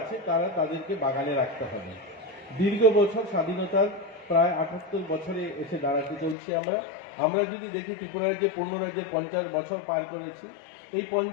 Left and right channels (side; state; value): right; drops out; at 6.4 s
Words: আছে তারা তাদেরকে বাগানে রাখতে হবে। দীর্ঘ বছর স্বাধীনতার প্রায় 78 বছরে এসে দাঁড়াতে চলছি আমরা যদি দেখি ত্রিপুরার যে পূর্ণরাজ্যে 50 বছর পার করেছি, এই